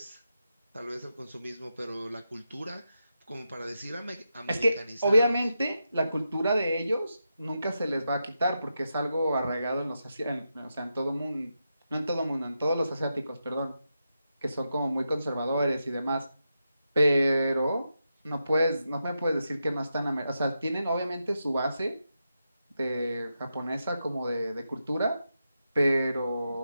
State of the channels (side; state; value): both; inverted; correlation -0.87